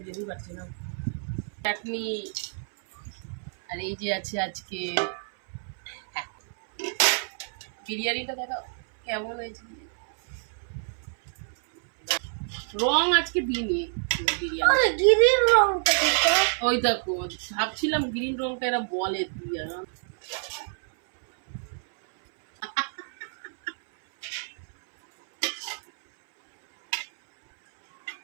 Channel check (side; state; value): left; silent; 60 dB below the other